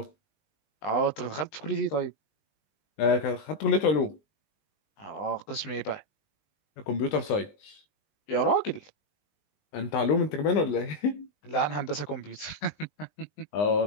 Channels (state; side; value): late; right; 20 ms